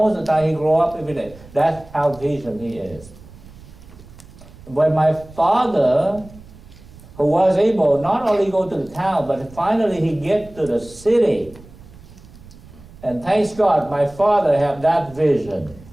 of the time he grew up every day. That's how vision he is. When my father, who was able not only go to the town, but finally he get to the city. And thanks God, my father had that vision.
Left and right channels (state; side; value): noise; right; rumble, 20 dB below the sound